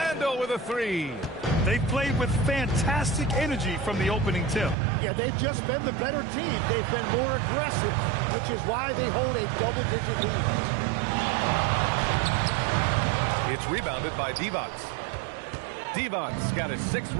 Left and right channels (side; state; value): left; drops out; at 4.8 s